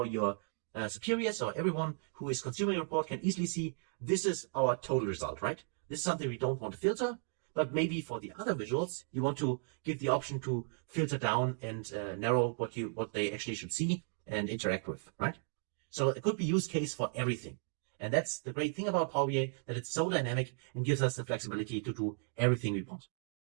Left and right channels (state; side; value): silent; left; 54 dB below the other